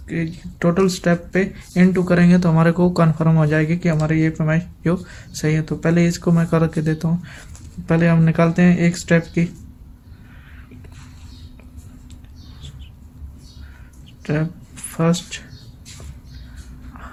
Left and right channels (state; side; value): identical; both; correlation 1.00